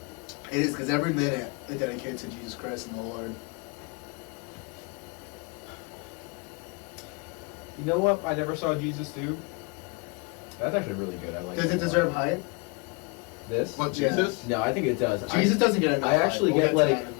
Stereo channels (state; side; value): quieter; right; 30.1 dB